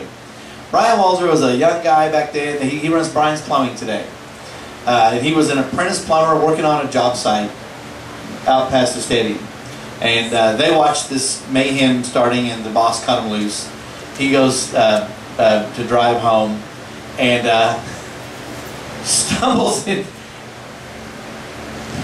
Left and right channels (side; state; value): both; identical; correlation 1.00